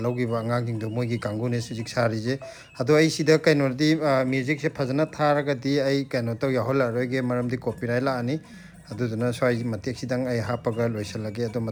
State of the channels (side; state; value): both; identical; correlation 1.00